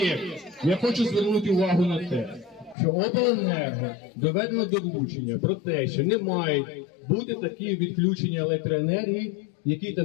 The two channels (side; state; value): right; drops out; at 2.8 s